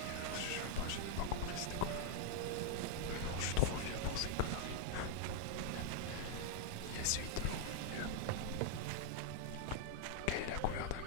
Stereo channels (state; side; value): different; both; correlation 0.00